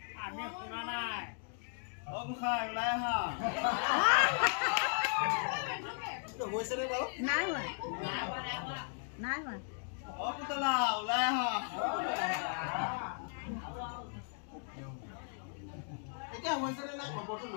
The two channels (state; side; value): silent; right; 53 dB below the other